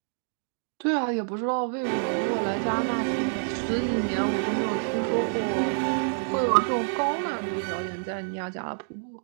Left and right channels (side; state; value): left; silent; digital silence